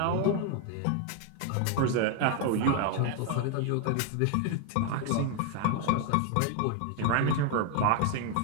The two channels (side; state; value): both; different; correlation 0.01